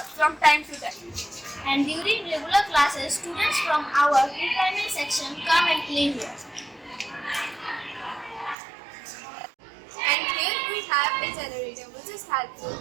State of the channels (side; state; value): left; drops out; at 8.6 s